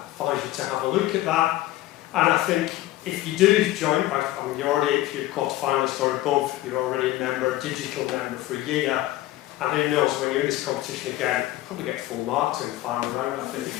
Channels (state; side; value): quieter; right; 15.9 dB